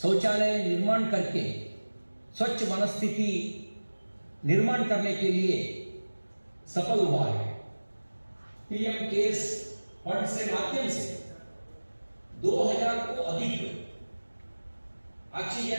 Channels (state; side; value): inverted; both; correlation -1.00